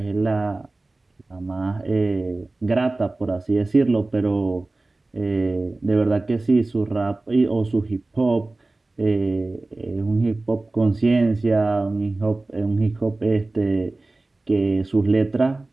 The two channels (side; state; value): left; quieter; 3.1 dB